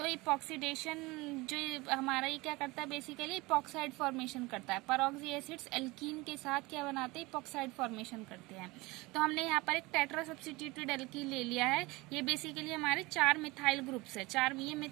इपॉक्सीडेशन जो हमारा ये क्या करता है, बेसिकली इपॉक्साइड फॉर्मेशन करता है। परऑक्सी एसिड्स एल्कीन के साथ क्या बनाते हैं, इपॉक्साइड फॉर्मेशन करते हैं। तो हमने यहाँ पर एक टेट्रा सब्स्टिट्यूटेड एल्कीन ले लिया है। ये बेसिकली हमारे 4 मिथाइल ग्रुप्स है। ये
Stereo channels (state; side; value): quieter; left; 22.8 dB